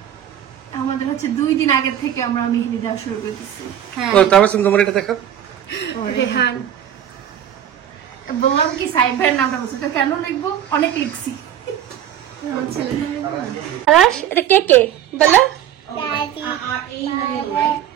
আমাদের হচ্ছে 2 দিন আগে থেকে আমরা মেহেদি দেওয়া শুরু করে দিচ্ছি। হ্যাঁ তাবাসসুম তোমার এটা দেখো। রেহান বললাম কি সাইবার নামটা বলছো কেন লিখবো অনেক লিখছি। আরাশ এটা কে কে বলো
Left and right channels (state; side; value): quieter; left; 10.4 dB